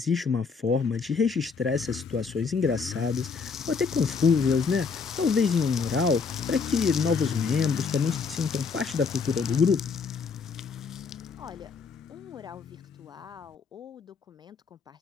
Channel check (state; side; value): quieter; right; 5.2 dB